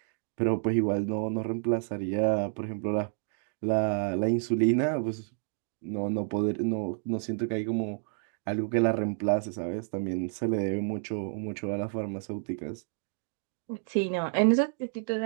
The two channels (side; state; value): left; silent; 58 dB below the other